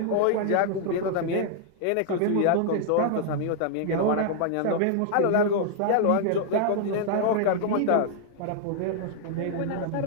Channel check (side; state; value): both; different; correlation -0.01